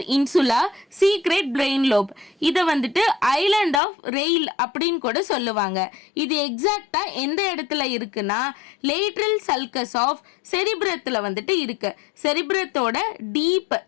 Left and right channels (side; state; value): right; drops out; at 3.8 s